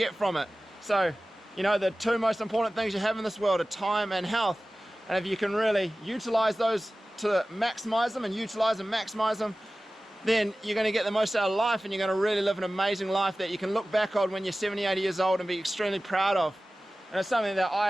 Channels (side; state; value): both; normal; correlation 0.96